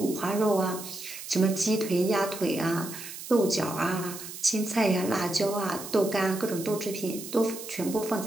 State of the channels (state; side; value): noise; right; hiss, 11 dB below the sound